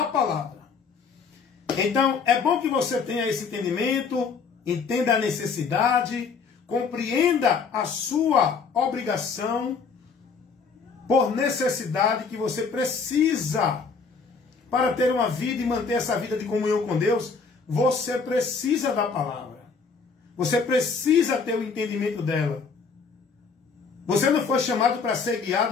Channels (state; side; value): quieter; right; 5.2 dB